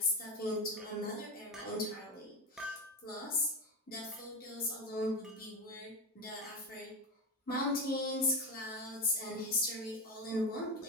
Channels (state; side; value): normal; both; correlation 0.17